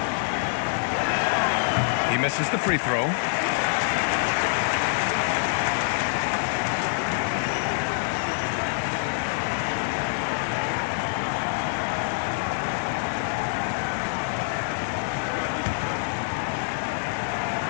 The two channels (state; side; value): silent; right; digital silence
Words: He misses the free throw.